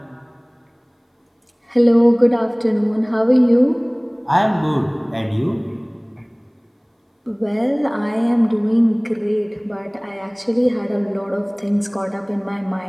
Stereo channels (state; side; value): identical; both; correlation 1.00